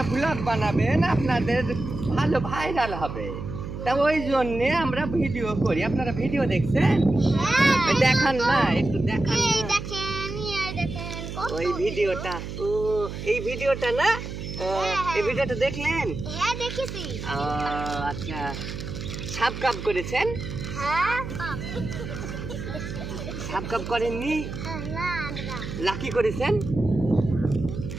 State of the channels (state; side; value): noise; right; hum, 8 dB below the sound